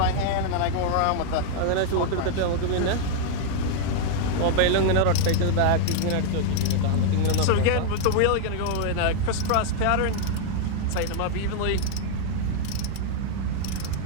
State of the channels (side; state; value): both; different; correlation 0.00